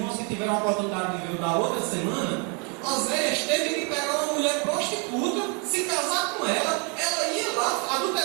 que tiveram a oportunidade de ver da outra semana, Oséias teve que pegar uma mulher prostituta, se casar com ela, ela ia lá,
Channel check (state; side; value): quieter; left; 32.0 dB